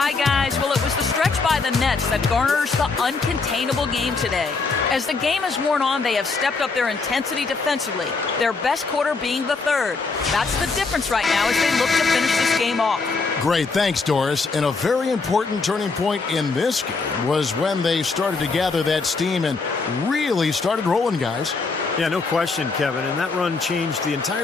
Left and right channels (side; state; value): right; quieter; 4.3 dB